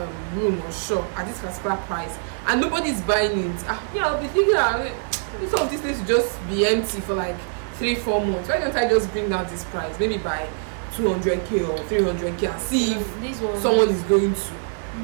room or shop at this particular price and nobody's buying it, I'll be thinking some of this place will just be empty for like 3-4 months. Why don't I just bring down this price, maybe by 200k or 300k, and see if someone is going to.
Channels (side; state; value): left; silent; digital silence